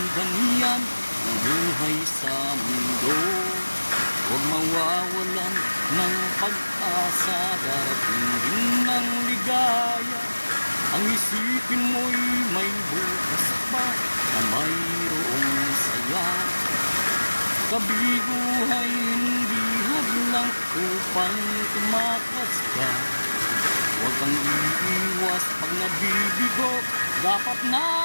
ganyan ang buhay sa mundo. Huwag mawawalan ng pag-asa, darating din ng ligaya. Ang isipin mo'y may bukas pa na mayroong saya. Kabiguhay hindi hadlang upang tumakas ka. Huwag kang iiwas pag nabibigo, dapat na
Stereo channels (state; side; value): inverted; both; correlation -1.00